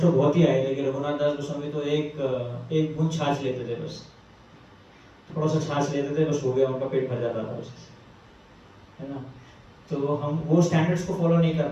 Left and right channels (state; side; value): identical; both; correlation 1.00